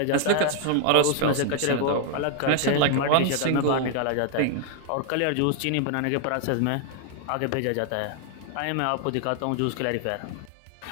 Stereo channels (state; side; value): different; both; correlation 0.00